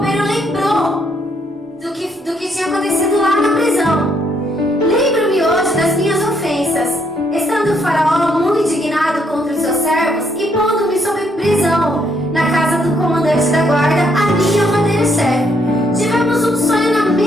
lembrou do que tinha acontecido lá na prisão. Lembro-me hoje das minhas ofensas, estando o Faraó muito indignado contra os seus servos e pondo-me sob prisão na casa do comandante da guarda, a mim e ao padeiro-chefe. Tivemos um sonho na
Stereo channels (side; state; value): both; normal; correlation 0.72